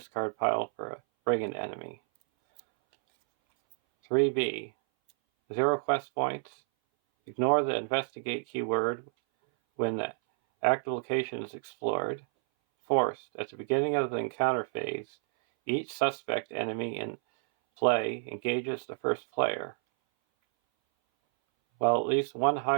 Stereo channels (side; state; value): left; silent; 58 dB below the other